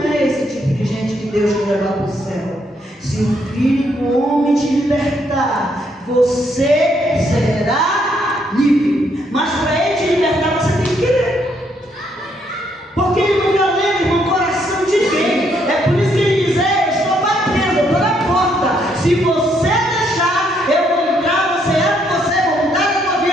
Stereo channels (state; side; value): normal; both; correlation 0.72